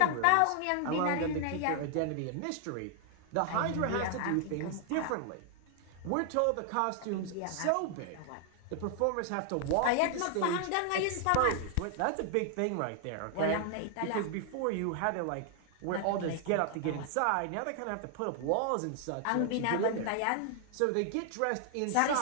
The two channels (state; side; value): different; both; correlation 0.00